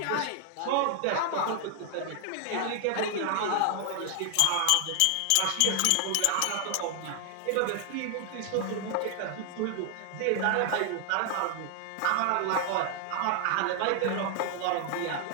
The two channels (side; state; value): both; different; correlation 0.00